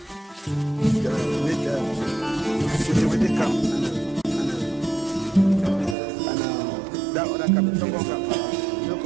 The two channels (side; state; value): left; drops out; at 6.0 s